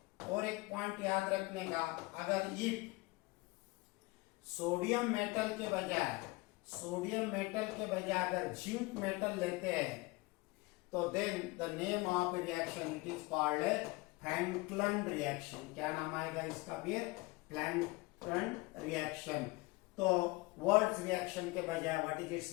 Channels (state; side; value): quieter; right; 23.9 dB